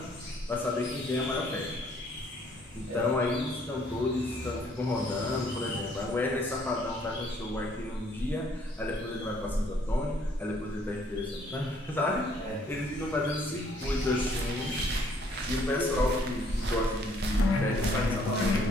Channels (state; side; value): normal; both; correlation 0.63